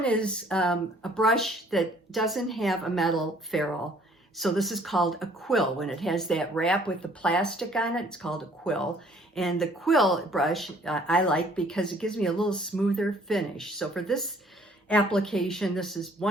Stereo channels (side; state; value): both; normal; correlation 0.58